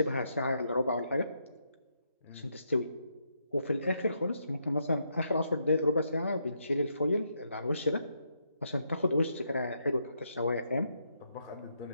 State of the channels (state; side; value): inverted; both; correlation -0.78